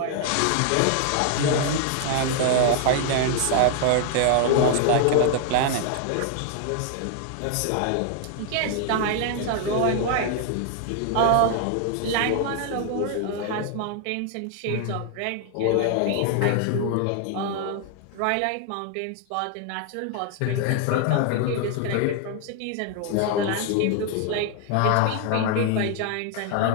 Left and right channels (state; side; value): different; both; correlation 0.00